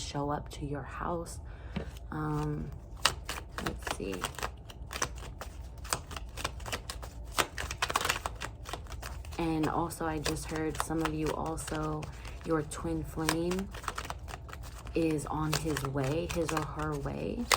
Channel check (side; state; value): both; identical; correlation 1.00